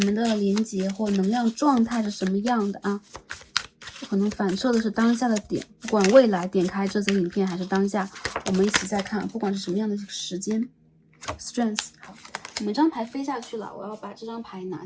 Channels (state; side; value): identical; both; correlation 1.00